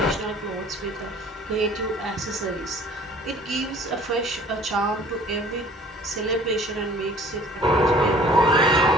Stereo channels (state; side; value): normal; both; correlation 0.51